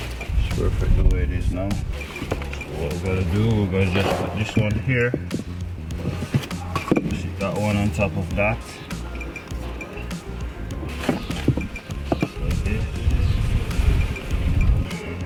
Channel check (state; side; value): identical; both; correlation 1.00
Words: It's perfect the way it is now. So what we're gonna do, we're gonna just put this one here, sit that one on top of that, like this.